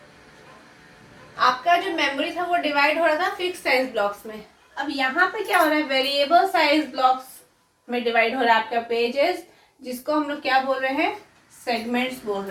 आपका जो मेमोरी था वो डिवाइड हो रहा था फिक्स साइज ब्लॉक्स में। अब यहाँ पे क्या हो रहा है, वेरिएबल साइज ब्लॉक्स में डिवाइड हो रहा है आपका पेजेस, जिसको हम लोग क्या बोल रहे हैं, सेगमेंट्स बोल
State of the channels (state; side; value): identical; both; correlation 1.00